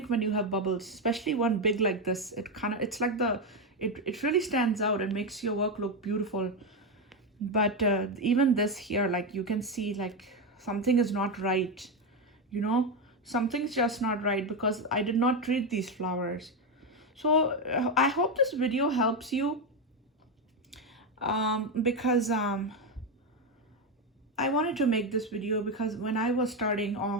when you have bubbles, especially one big like this. It's like it really stands out and makes your work look beautiful. But even this here, like you can see, like something is not right, you know. Something's just not right because I did not treat these flowers. So I hope this video helps you, because I wanted to make this video because when I was starting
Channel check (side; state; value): both; normal; correlation 0.09